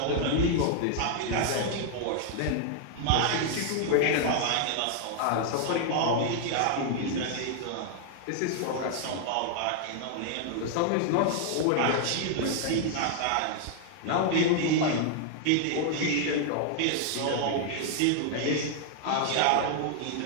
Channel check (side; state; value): both; different; correlation 0.00